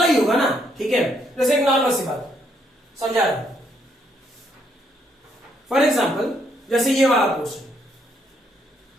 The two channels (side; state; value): both; normal; correlation 0.72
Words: ही होगा ना। ठीक है, जैसे एक नॉर्मल सी बात समझा रहा हूं, फॉर एग्जाम्पल जैसे ये वाला क्वेश्चन,